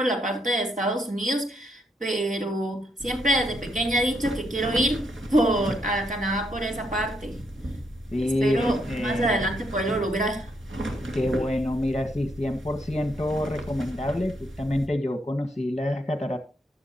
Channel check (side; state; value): both; normal; correlation 0.77